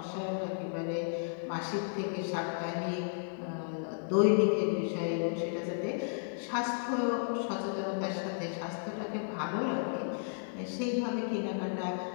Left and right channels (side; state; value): right; silent; digital silence